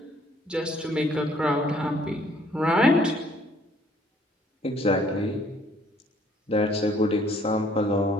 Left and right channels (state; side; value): normal; both; correlation 0.62